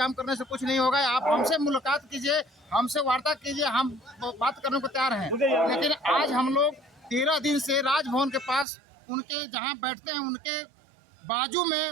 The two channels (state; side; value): drops out; left; at 8.7 s